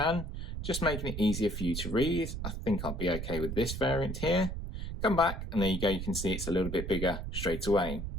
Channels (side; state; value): right; noise; rumble, 5 dB below the sound